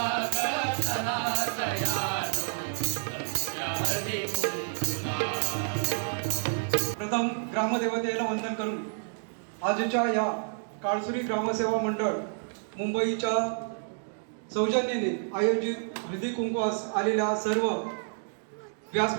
ग चला सयानो, जमूया हळदी कुंकूला. प्रथम ग्रामदेवतेला वंदन करून आजच्या या काळसुरी ग्रामसेवा मंडळ मुंबईच्या सौजन्याने आयोजित हळदी कुंकवास आलेल्या सर्व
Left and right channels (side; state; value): left; silent; digital silence